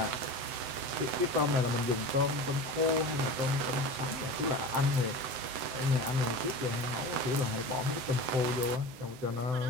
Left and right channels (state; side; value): late; left; 7.8 ms